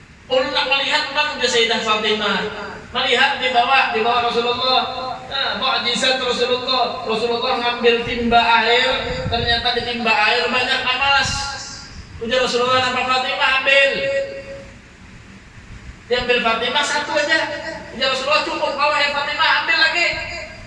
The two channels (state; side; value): identical; both; correlation 1.00